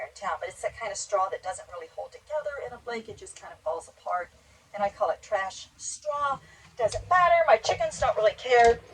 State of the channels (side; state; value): both; identical; correlation 1.00